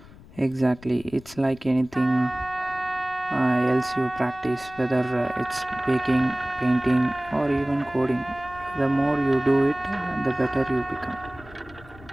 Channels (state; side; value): noise; left; rumble, 21 dB below the sound